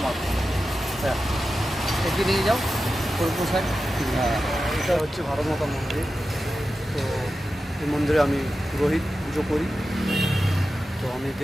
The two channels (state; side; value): normal; both; correlation 0.92